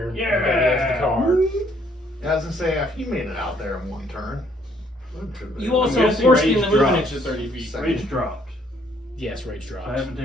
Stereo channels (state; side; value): normal; both; correlation 0.66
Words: Yeah. You got against the car. I was gonna say, if you made it out there in one turn. You also guessing forced rage him to move an drops. inch to 30 feet. Second. Rage dropped. Yes, rage drops. I haven't